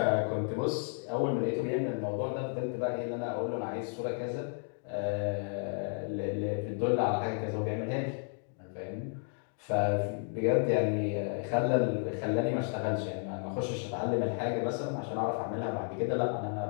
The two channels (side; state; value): right; silent; 56 dB below the other